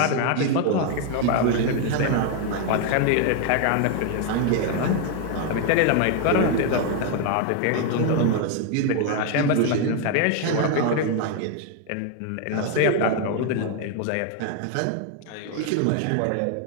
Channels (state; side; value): different; both; correlation 0.01